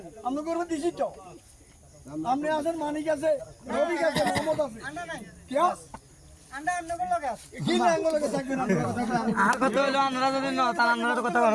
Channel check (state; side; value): identical; both; correlation 1.00